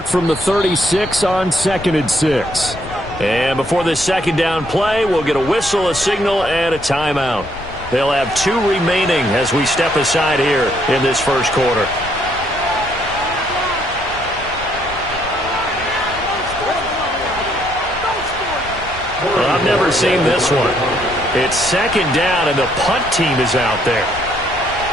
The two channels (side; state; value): left; noise; rumble, 15 dB below the sound